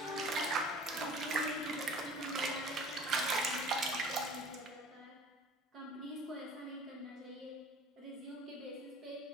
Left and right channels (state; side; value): normal; both; correlation 0.45